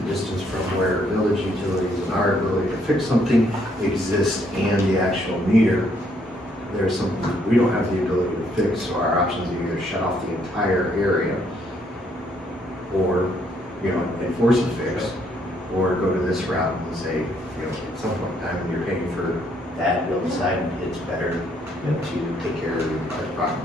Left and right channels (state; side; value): normal; both; correlation 0.70